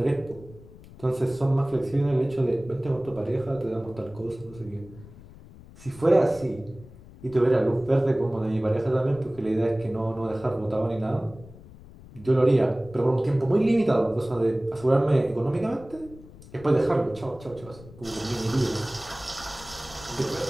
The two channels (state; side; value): noise; left; rumble, 20 dB below the sound